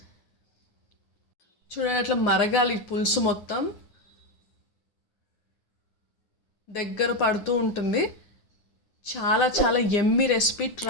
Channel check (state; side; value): late; right; 9.8 ms